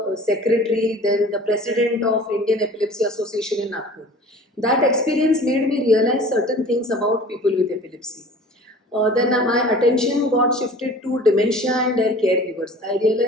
secretary, then the president of Indian Epilepsy Association in Nagpur. That experience made me realize certain things about people with epilepsy. Then my attention got shifted to dementia and their caregivers. I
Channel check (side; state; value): both; normal; correlation 0.44